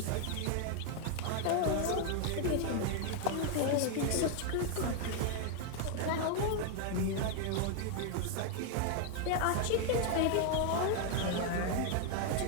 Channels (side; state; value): both; different; correlation 0.00